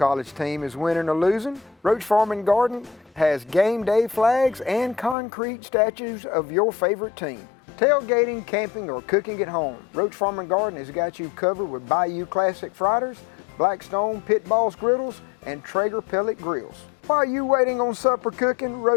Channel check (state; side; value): drops out; right; at 5.2 s